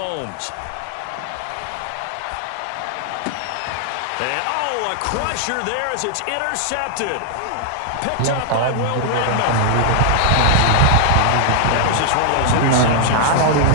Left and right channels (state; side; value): different; both; correlation 0.00